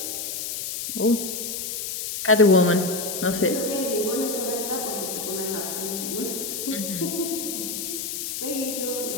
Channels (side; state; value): left; noise; hiss, 4 dB below the sound